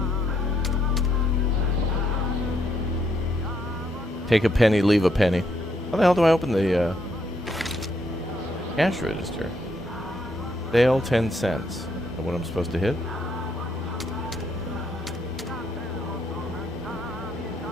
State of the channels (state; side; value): normal; both; correlation 0.74